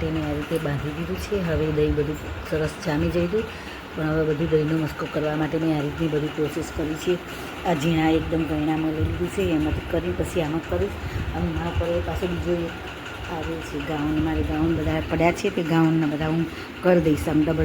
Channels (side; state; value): both; identical; correlation 1.00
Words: મેં આ રીતે બાંધી દીધું છે. હવે દહીં બધું સરસ જામી જઈ હતું, પણ હવે બધું દહીંનો મસ્કો કરવા માટે મેં આ રીતની બધી પ્રોસેસ કરી છે. આ ઝીણા એકદમ ગયણામાં લઈ લીધું છે, એમાંથી કરી પછી આમાં કરીશ. અને મારા પર પાછો બીજો એક આવે છે ગાઉન. મારે ગાઉન બધા પડ્યા છે, તે ગાઉનના બધા હું કરી દઈશ. આમ